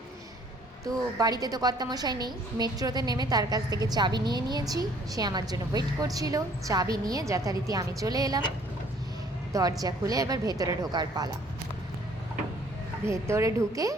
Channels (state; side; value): normal; both; correlation 0.58